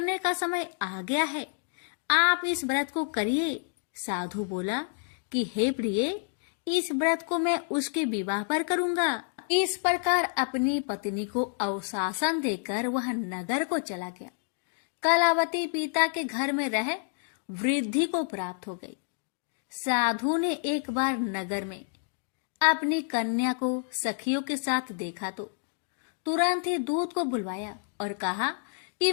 का समय आ गया है। आप इस व्रत को करिए। साधु बोला कि हे प्रिय, इस व्रत को मैं उसके विवाह पर करूंगा। इस प्रकार अपनी पत्नी को अवशासन देकर वह नगर को चला गया। कलावती पिता के घर में रह वृद्धि को प्राप्त हो गई। साधु ने एक बार नगर में अपनी कन्या को सखियों के साथ देखा तो तुरंत ही दूत को बुलवाया और कहा कि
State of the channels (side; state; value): right; silent; 59 dB below the other